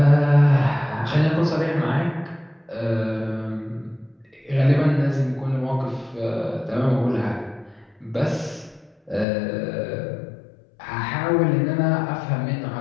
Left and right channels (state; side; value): drops out; right; at 9.2 s